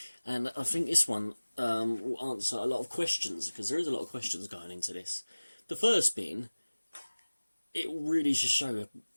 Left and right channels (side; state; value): both; inverted; correlation -1.00